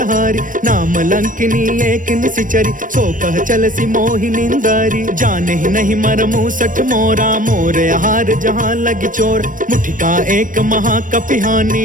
नाम लंकिनी एक निशिचरी, सो कह चल सी मोहि निंदारी। जाने ही नहीं मरमु सठ मोरा, मोर आहार जहाँ लगी चोर। मुठिका एक महाकपिहानी,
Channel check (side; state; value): left; late; 0.38 ms